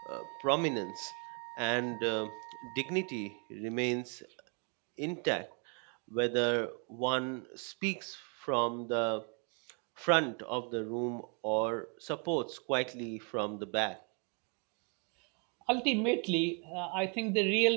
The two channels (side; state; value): left; quieter; 37.4 dB